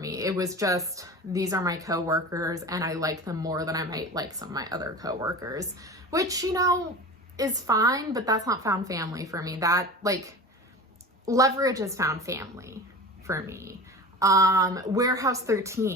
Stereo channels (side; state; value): both; normal; correlation 0.34